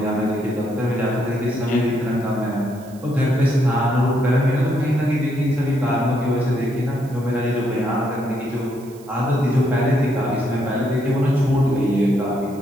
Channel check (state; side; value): noise; right; hiss, 25 dB below the sound